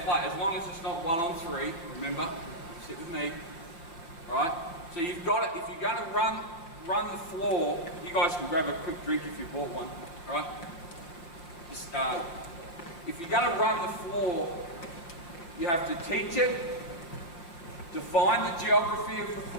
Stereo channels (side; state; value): right; late; 5.8 ms